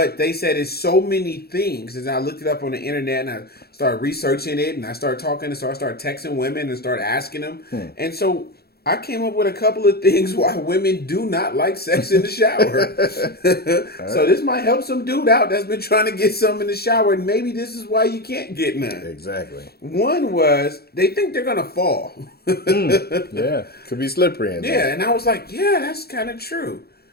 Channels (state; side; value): late; right; 0.46 ms